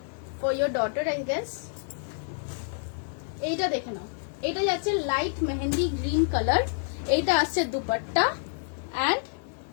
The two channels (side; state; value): right; silent; digital silence